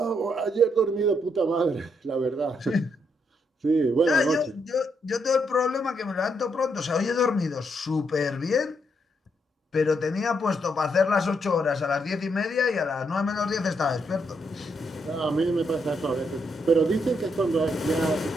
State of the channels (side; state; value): both; normal; correlation 0.77